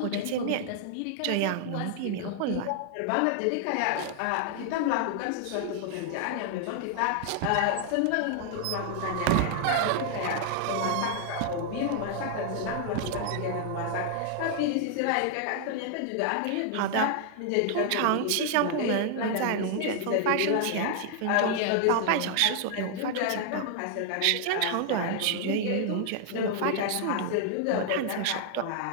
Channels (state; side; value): different; both; correlation 0.00